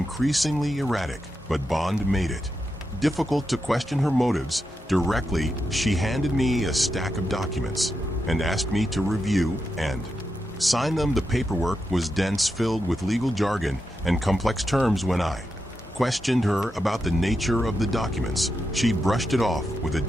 erratic, but Bond made it difficult to question her motives directly. She handed me a stack of documents and asked me to review and sign them. The paperwork was dense, filled with legal jargon and complex terms. When I questioned her about the nature of the documents, she brushed it off with a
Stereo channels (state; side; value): normal; both; correlation 0.86